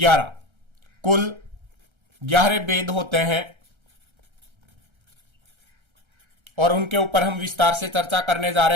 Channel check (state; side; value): late; left; 1.3 ms